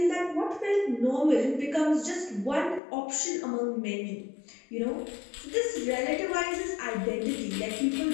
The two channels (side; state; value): right; drops out; at 2.8 s